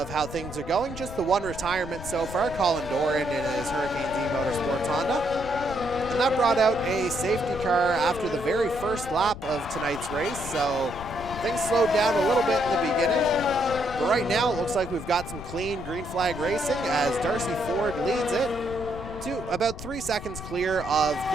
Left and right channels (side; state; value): left; noise; rumble, 11 dB below the sound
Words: how things are going. Just the one retirement so far, Colin Doran in his Hurricanes E-Motorsports Honda. And that brought out a safety car after the very first lap of tonight's race, so things slowed down a little bit in the beginning. But right now it looks like we've got some clean green flag racing as Darcy Ford leads it to about 3 seconds clear of